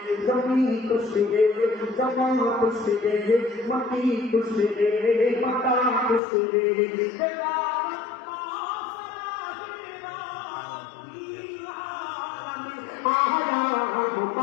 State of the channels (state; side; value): drops out; right; at 6.2 s